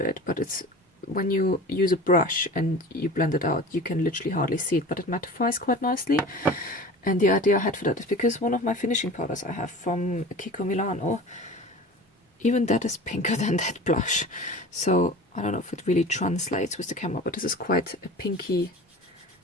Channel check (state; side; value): normal; both; correlation 0.38